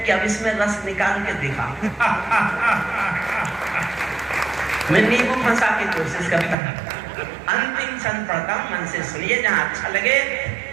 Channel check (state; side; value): drops out; left; at 6.6 s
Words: कि अब इसमें रस निकाल के दिखा। मैं नींबू फंसा की कोशिश करता हूं। अंतिम क्षण पढ़ता हूं, मन से सुनिए, जहां अच्छा लगे।